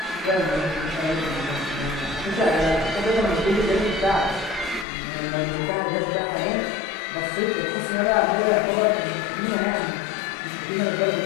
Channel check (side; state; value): right; drops out; at 4.9 s